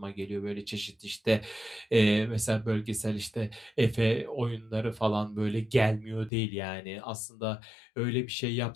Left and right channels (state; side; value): drops out; right; at 6.3 s